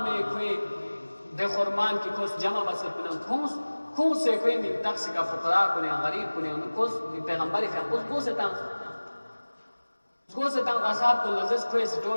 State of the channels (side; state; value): both; inverted; correlation -1.00